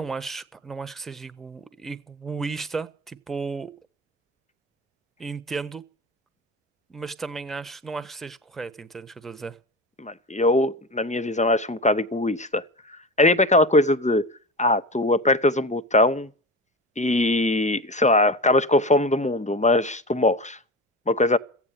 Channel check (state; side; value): normal; both; correlation 0.27